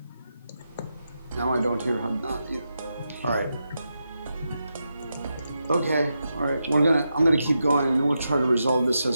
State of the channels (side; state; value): both; inverted; correlation -0.87